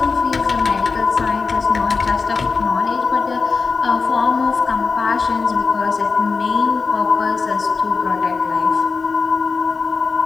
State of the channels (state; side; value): quieter; right; 4.6 dB